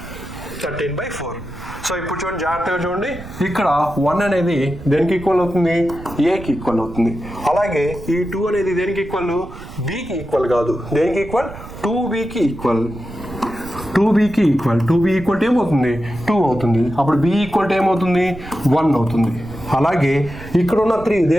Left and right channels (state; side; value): noise; right; rumble, 14 dB below the sound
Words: 13/4. సో ఇప్పుడు చూడండి జాగ్రత్తగా చూడండి, ఇక్కడ 1 అనేది దేనికి ఈక్వల్ అవుతుంది? Aకి ఈక్వల్ అవుతుంది. అలాగే ఈ 2 అనేది దేనికి ఈక్వల్? Bకి ఈక్వల్ కాదు. దేనికి ఈక్వల్? 2Bకి ఈక్వల్. 2Bకి ఈక్వల్. 2B ఈక్వల్ ఏమవుతుంది? 2 అవుతుంది. అప్పుడు B ఈక్వల్ ఏమవుతుంది? 1 అవుతుంది. అలాగే ఇక్కడ ఉన్న 3